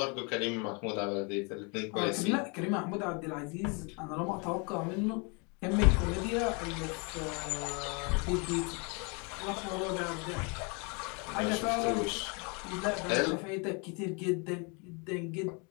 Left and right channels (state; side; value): quieter; right; 32.7 dB